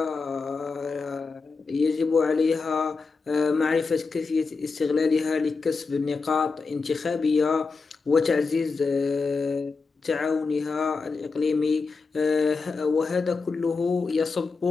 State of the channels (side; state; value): right; quieter; 4.4 dB